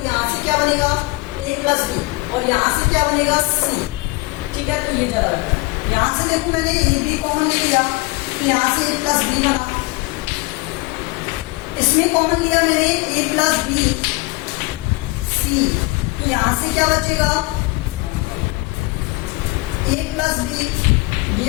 यहाँ से क्या बनेगा ए प्लस बी और यहाँ से क्या बनेगा सी। ठीक है, तो ये जरा यहाँ से देखो मैंने ए बी कॉमन ले लिया, तो यहाँ से ए प्लस बी बना, इसमें कॉमन लिया मैंने ए प्लस बी सी, तो यहां से क्या बचेगा ए प्लस बी ये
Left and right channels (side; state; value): right; quieter; 24.2 dB